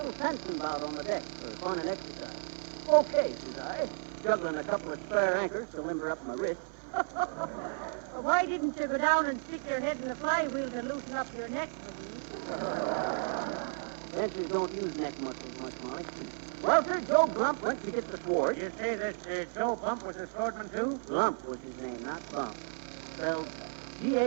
fencing bout on the deck for fun and exercise? Okay, says I, juggling a couple of spare anchors to limber up my wrist. Well, why didn't you go down and stick your head in the flywheel to loosen up your neck, McGee? Fencers don't use neck muscles much, Molly. Well, sir, Joe Glump went to get the sword. You say this Joe Bump was a swordman, too? Glump was his name, not Bump. Spelled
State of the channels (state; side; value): silent; left; 56 dB below the other